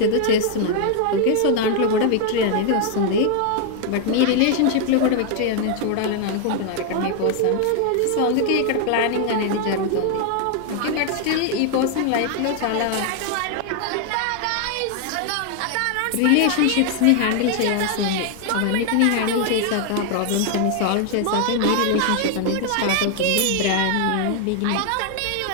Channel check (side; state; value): both; different; correlation 0.00